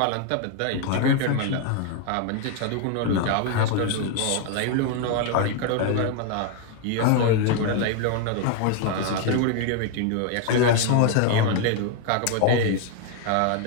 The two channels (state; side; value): different; both; correlation 0.00